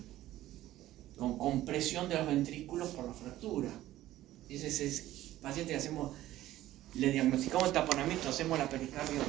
con compresión de los ventrículos por la fractura. Ese es el paciente que le diagnosticamos el taponamiento, hacemos la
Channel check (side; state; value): left; quieter; 14.7 dB